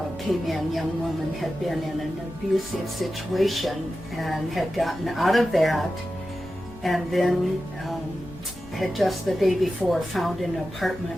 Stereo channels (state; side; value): noise; left; rumble, 21 dB below the sound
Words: came in, young woman, had been in an abusive situation and had gotten out of that, and then had just the day before found an